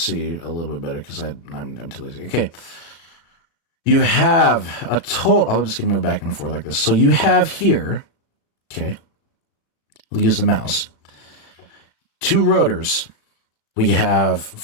a little bit better, because I'm too lazy. Okay. You have a total... I'm just going to move back and forth like this. So you have here... Okay. We'll use the mouse. 2 rotors. We have,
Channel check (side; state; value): right; late; 36 ms